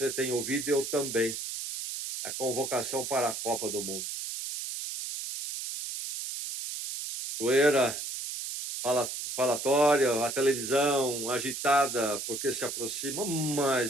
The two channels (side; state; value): right; noise; hiss, 6 dB below the sound